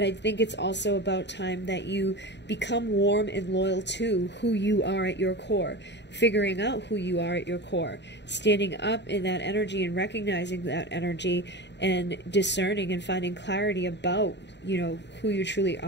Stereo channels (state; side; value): late; right; 0.51 ms